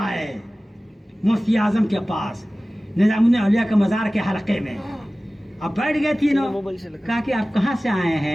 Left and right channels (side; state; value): both; normal; correlation 0.97